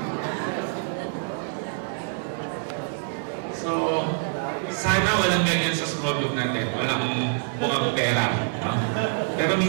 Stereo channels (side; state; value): left; silent; 56 dB below the other